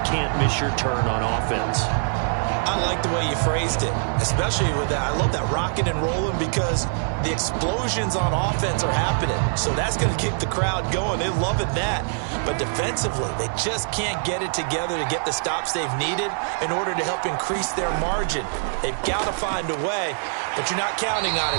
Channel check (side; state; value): left; silent; digital silence